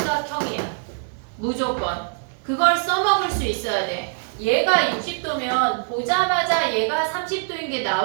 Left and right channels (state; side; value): silent; left; 59 dB below the other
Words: 무조건. 그걸 써먹을 수 있어야 돼. 얘가 60도면 보자마자 얘가 30도인 게